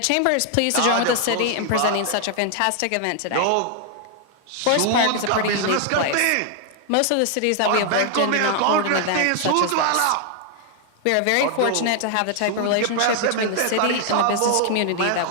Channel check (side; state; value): both; different; correlation 0.00